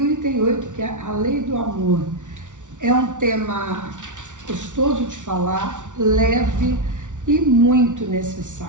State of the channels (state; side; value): late; left; 0.87 ms